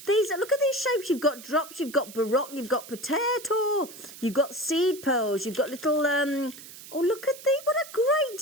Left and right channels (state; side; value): noise; right; hiss, 16 dB below the sound